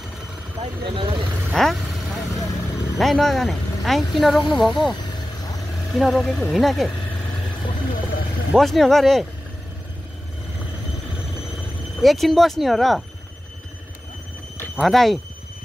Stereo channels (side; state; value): both; normal; correlation 0.95